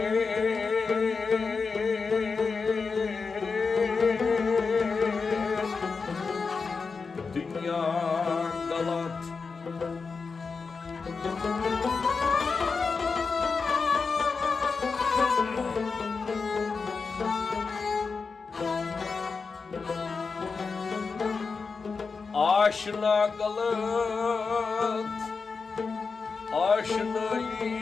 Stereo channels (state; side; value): quieter; right; 4.8 dB